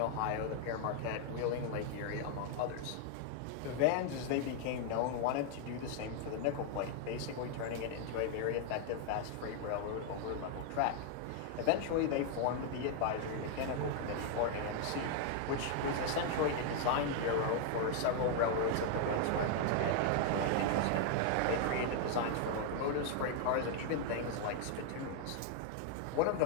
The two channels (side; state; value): both; different; correlation 0.00